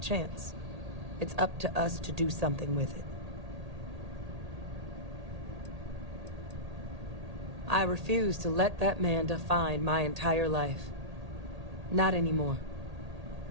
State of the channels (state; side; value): late; left; 1.8 ms